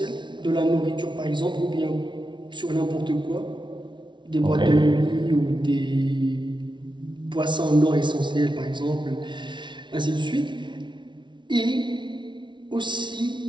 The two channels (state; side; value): late; left; 0.23 ms